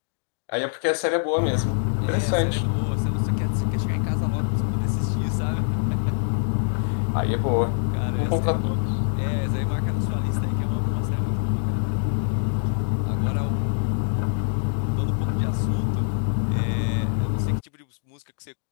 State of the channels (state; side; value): silent; right; 62 dB below the other